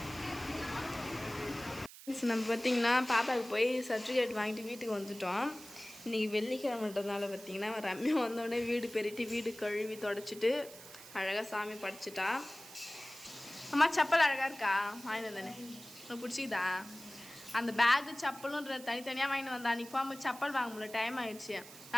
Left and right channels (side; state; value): right; noise; hiss, 17 dB below the sound